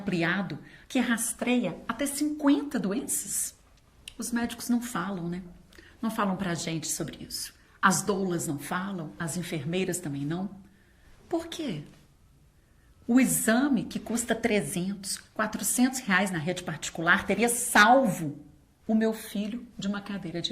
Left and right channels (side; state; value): both; identical; correlation 1.00